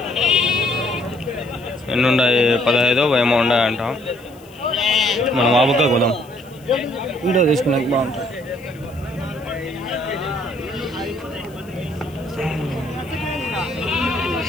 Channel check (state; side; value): noise; left; hiss, 27 dB below the sound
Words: ఎన్ని ఉన్నాయి? 15 ఏమో ఉన్నాయంట. మనం ఆబుగా కొదాం, వీడియో తీసుకున్నాక బాగుంటుంది.